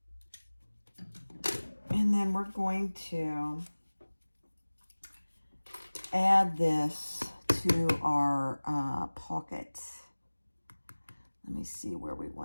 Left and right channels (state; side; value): inverted; both; correlation -1.00